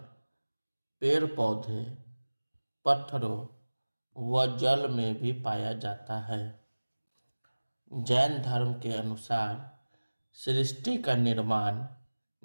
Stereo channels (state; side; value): inverted; both; correlation -1.00